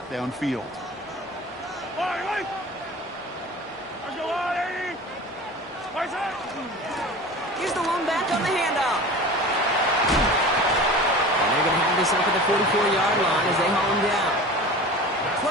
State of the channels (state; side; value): normal; both; correlation 0.37